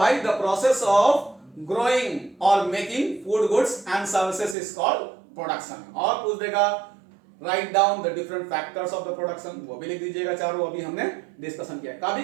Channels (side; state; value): left; drops out; at 4.5 s